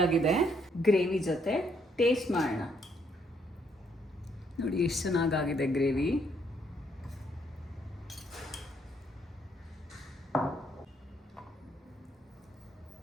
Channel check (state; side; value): normal; both; correlation 0.71